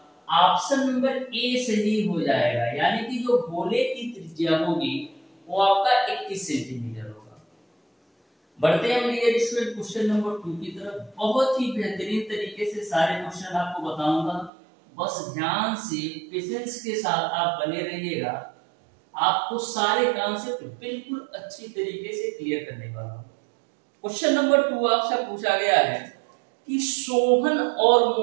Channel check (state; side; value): drops out; left; at 14.5 s